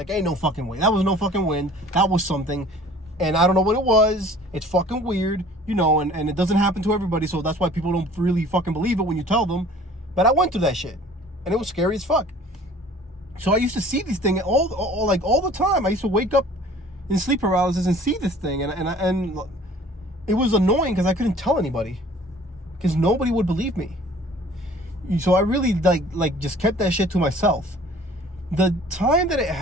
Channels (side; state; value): both; normal; correlation 0.50